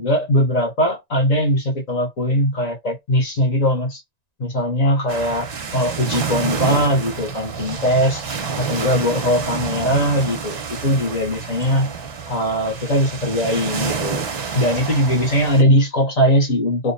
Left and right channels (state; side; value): late; right; 1.9 ms